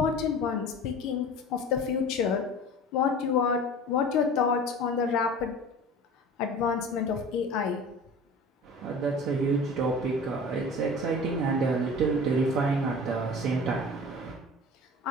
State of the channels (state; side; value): normal; both; correlation 0.38